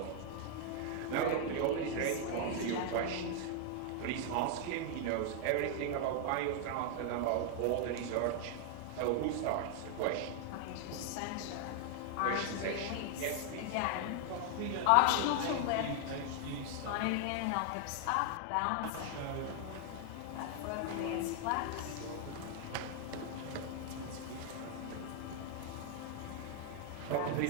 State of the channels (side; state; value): both; different; correlation 0.00